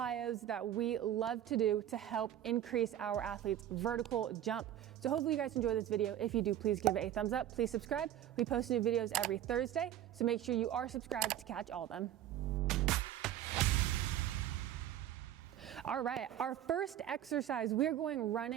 that we love to do to help increase our athletes' vertical jump. So hopefully you guys enjoy this video. If you do, please give it a thumbs up. Please subscribe. We post new videos every Thursday, so make sure you are subscribed to catch all of them. All right, our first exercise, we're going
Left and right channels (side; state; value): left; quieter; 11.6 dB